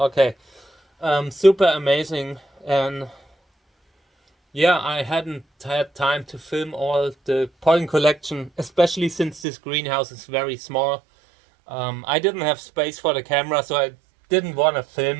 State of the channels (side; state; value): left; drops out; at 9.5 s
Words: Super amazing. And yeah, I hadn't had time to film all the pollen collection, especially since this greenhouse is very small. I didn't have space for the camera, so I didn't want to